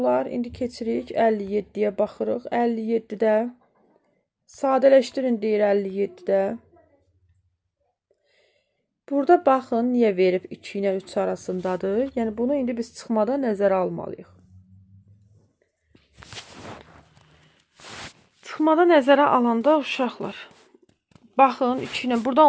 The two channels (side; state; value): both; identical; correlation 1.00